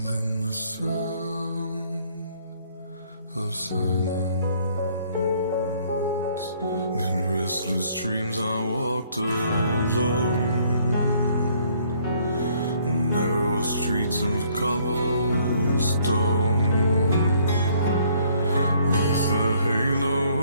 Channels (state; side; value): inverted; both; correlation -0.63